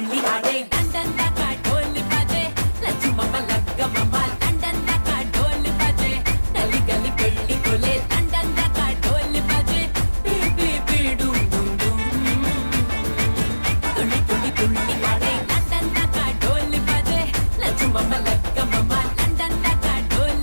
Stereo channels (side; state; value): both; inverted; correlation -1.00